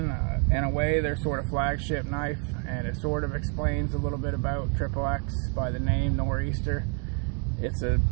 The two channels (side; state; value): left; quieter; 37.6 dB